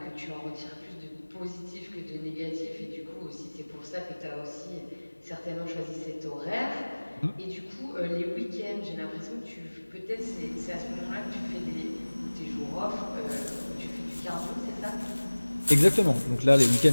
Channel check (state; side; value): inverted; both; correlation -1.00